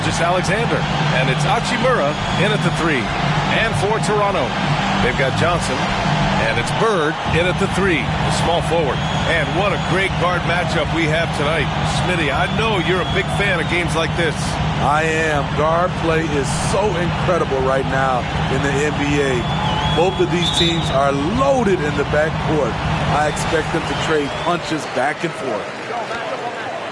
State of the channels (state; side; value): identical; both; correlation 1.00